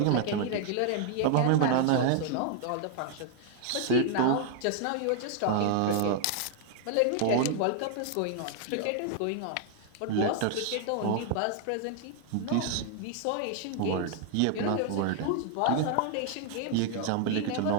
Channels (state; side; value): different; both; correlation 0.00